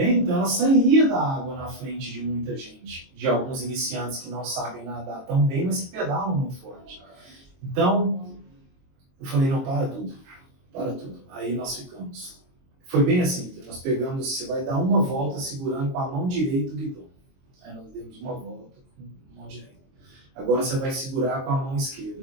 então ela sairia da água na frente de muita gente, de alguns iniciantes que não sabem nadar tão bem, mas que pedalam muito forte. Então, eu falei, não, para tudo. Aí nós ficamos. Foi bem assim, nós pegamos, você vai dar uma volta segurando com a mão direita o guidão. Aí nós demos uma volta com a mão direita. Agora você vai segurar com a mão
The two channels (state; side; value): late; left; 22 ms